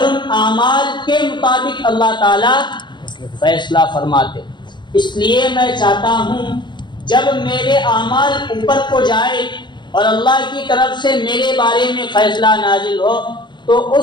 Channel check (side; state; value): right; late; 0.22 ms